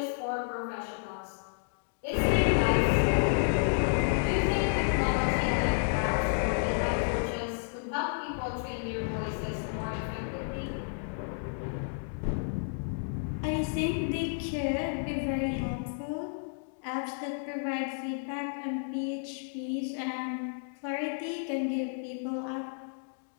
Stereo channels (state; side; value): silent; right; digital silence